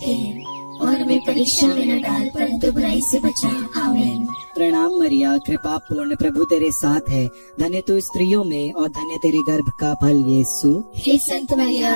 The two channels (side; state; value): both; inverted; correlation -1.00